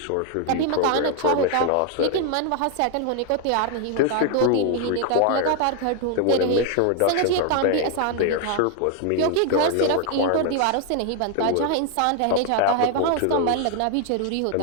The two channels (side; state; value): both; different; correlation 0.00